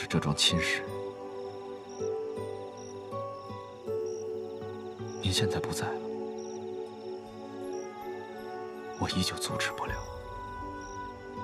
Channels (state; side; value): identical; both; correlation 1.00